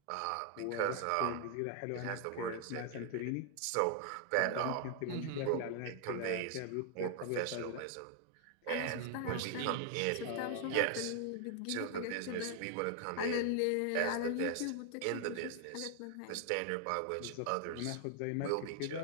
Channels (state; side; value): different; both; correlation 0.00